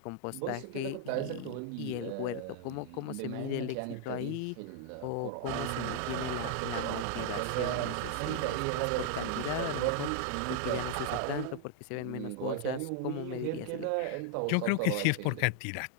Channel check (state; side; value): different; both; correlation 0.00